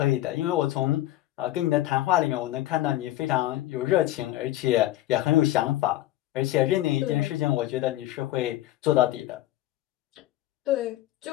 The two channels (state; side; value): quieter; right; 15.0 dB